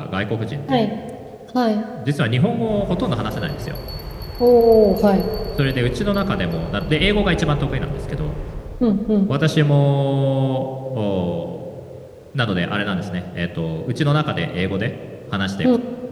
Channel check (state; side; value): identical; both; correlation 1.00